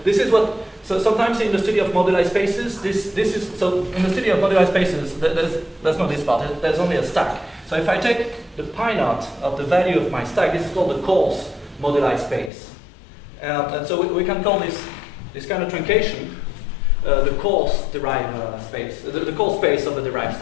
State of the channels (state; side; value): drops out; right; at 12.5 s